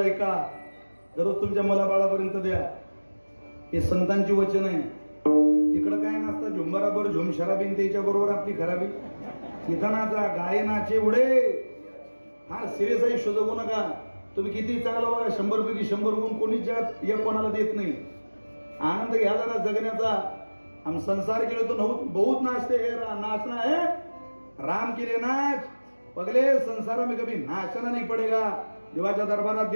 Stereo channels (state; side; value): inverted; both; correlation -1.00